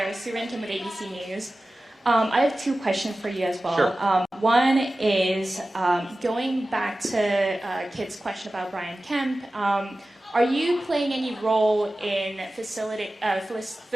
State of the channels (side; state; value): both; normal; correlation 0.96